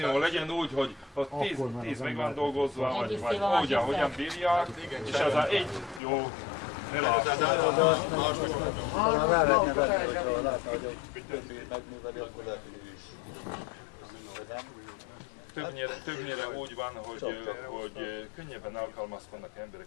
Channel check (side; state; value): right; drops out; at 6.0 s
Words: legyen úgy, hogy 10 meg van dolgozva, vagy úgy, ahogyan bírják, és ez a egy jó, ne látszik. Ha látna, hogy többét megműveli, akkor lehet, hogy ő is. Többnyire úgy van, hogy könnyebben alkalmazkodnak